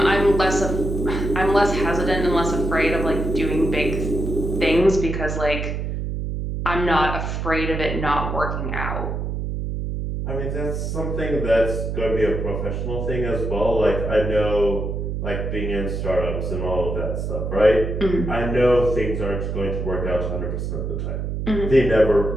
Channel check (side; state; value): right; noise; hum, 3 dB below the sound